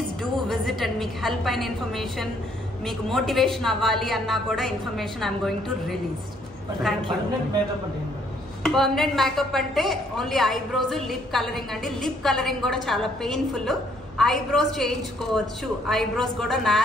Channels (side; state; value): both; normal; correlation 0.66